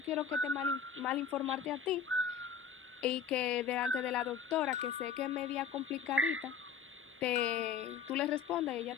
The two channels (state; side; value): quieter; right; 6.8 dB